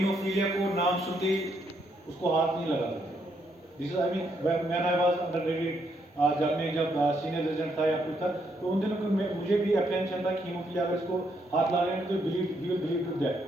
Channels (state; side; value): normal; both; correlation 0.75